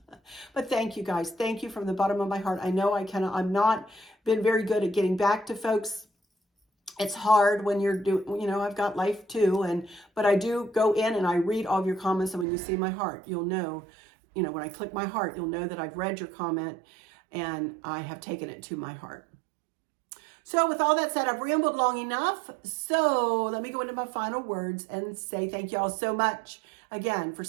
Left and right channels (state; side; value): drops out; left; at 12.5 s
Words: But thank you guys. Thank you from the bottom of my heart. I know I'm not been very good at getting back to folks. It's hard when you're doing, you know, I've got life too. But I do go in and I read all of your comments. And when you see my heart, you'll know, you know, when I click my heart, you'll know that I've read your comment and I have taken it to my heart. So with all that said, I've rambled long enough. So let me go into my final words and say thank you all so much again for